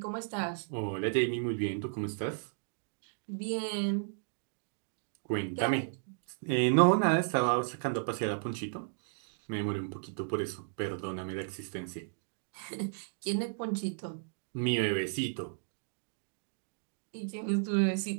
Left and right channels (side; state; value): left; silent; digital silence